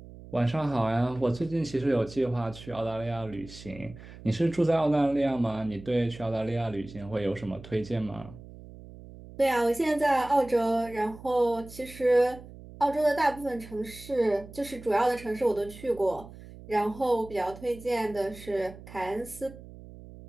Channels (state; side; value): noise; right; hum, 17 dB below the sound